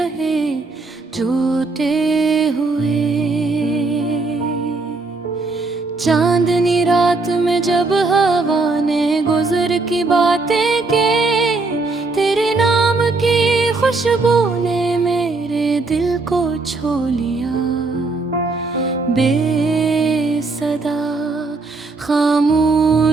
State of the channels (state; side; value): quieter; left; 3.6 dB